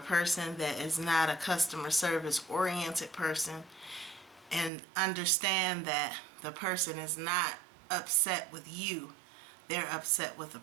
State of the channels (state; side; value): drops out; left; at 4.7 s